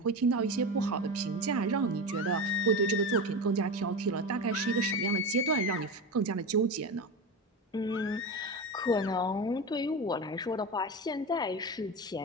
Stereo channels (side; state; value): both; normal; correlation 0.22